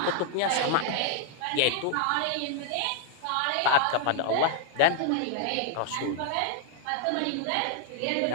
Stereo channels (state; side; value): different; both; correlation -0.01